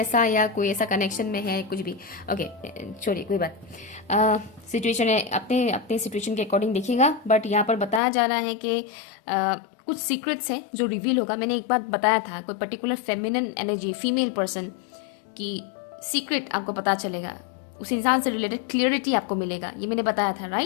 या कोई ऐसा कनेक्शन में है, कुछ भी। ओके, छोड़िए, कोई बात। सिचुएशन है, अपने अपने सिचुएशन के अकॉर्डिंग देखिएगा। बट यहाँ पर बताया जा रहा है कि कुछ सीक्रेट्स हैं जो रिवील होगा। मैंने एक बार बताया था, कोई particular feminine energy, female person की सीक्रेट आपको पता चलेगा, उस इंसान से रिलेटेड क्लियरिटी आपको मिलेगा, ये मैंने बताया था,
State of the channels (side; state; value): right; drops out; at 8.0 s